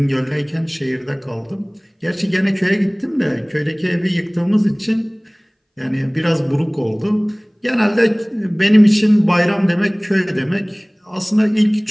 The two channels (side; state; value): both; identical; correlation 1.00